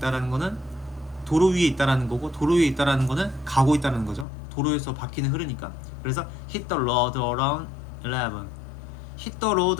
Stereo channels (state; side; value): drops out; right; at 4.2 s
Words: 거는 도로 위에 있다라는 거고, 도로 위에 있다라는 거는 가고 있다는 거죠. 도로에서 바퀴는 흐르니까. 그래서 hit the road around 11. hit the